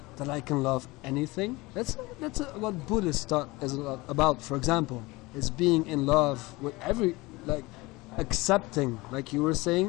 I can love anything? That's what Buddhist thought is about. For example, is being in love with like accepting, like you were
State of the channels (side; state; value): right; quieter; 22.3 dB